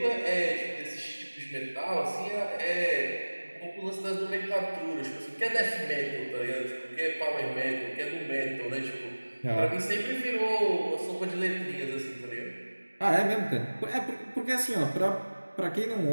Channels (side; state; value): both; inverted; correlation -1.00